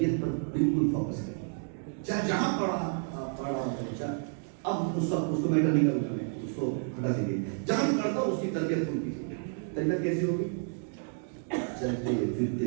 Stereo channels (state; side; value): silent; left; 57 dB below the other